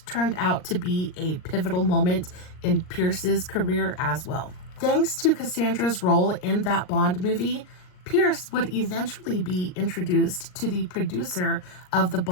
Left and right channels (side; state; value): right; late; 39 ms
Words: turned out to be a pivotal moment in Pierce's career as well. Thanks to Cassandra's role in that Bond movie, Pierce would eventually be introduced to the producer of the